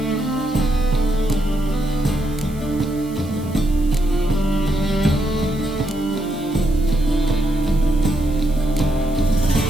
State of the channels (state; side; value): noise; right; hiss, 22 dB below the sound